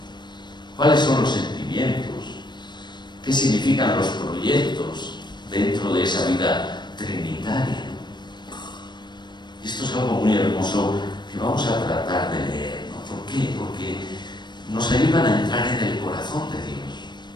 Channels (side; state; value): right; late; 0.22 ms